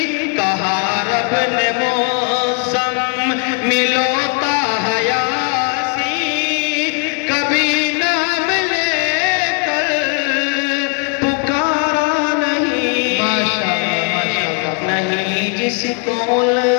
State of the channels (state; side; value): quieter; right; 35.9 dB